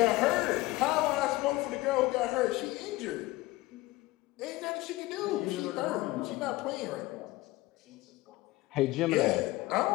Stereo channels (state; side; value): quieter; right; 19.4 dB